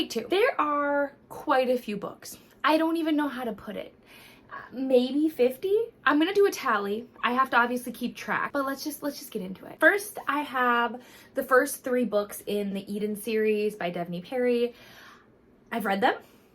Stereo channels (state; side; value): identical; both; correlation 1.00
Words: two. There are quite a few books. I don't even know how to put it. Maybe 50. I'm gonna do a tally. I have to obviously keep track, but let's just get into it. First, I have the first 3 books in the Eden series by Bethany Perry. I've read them.